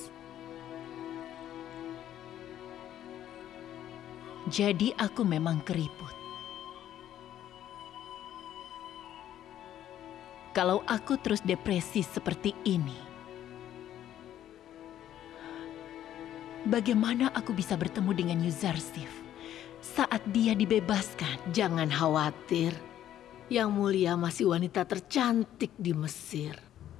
Jadi aku memang keriput. Kalau aku terus depresi seperti ini, bagaimana aku bisa bertemu dengan Yuzarsif saat dia dibebaskan? Jangan khawatir. Yang mulia masih wanita tercantik di Mesir.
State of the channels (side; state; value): right; quieter; 11.6 dB